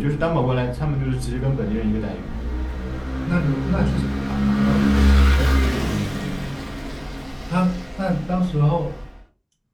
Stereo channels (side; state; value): both; identical; correlation 1.00